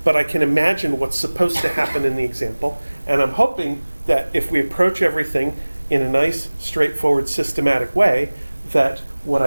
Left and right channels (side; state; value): both; inverted; correlation -1.00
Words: but I can imagine what's supposed to happen in the example. And I'm hoping that if we approach everything in a nice, straightforward, systematic way, that what